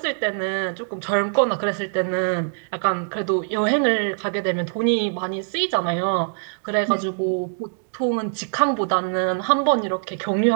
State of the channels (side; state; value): left; silent; digital silence